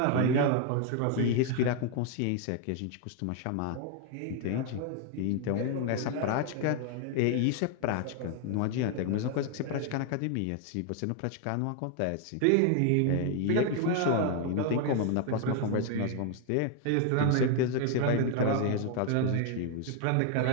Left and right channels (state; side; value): different; both; correlation 0.00